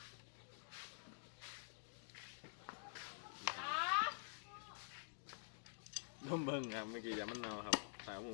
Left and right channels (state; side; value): silent; right; digital silence